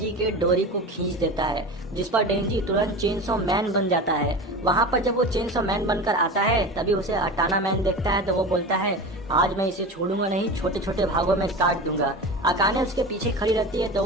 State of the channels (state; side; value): normal; both; correlation 0.29